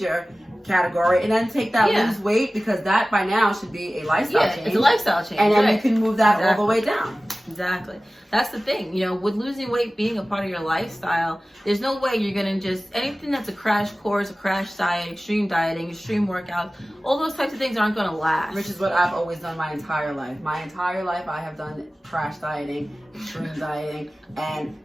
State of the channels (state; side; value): normal; both; correlation 0.97